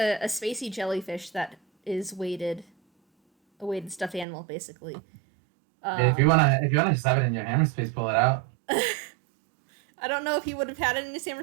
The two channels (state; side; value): drops out; left; at 4.2 s